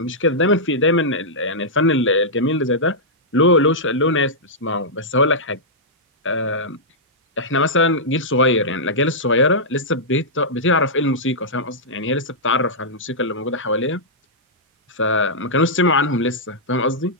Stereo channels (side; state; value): both; normal; correlation -0.11